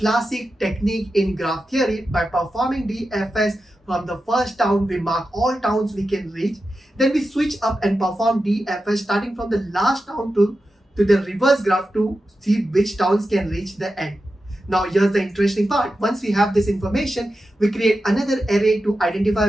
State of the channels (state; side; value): normal; both; correlation 0.91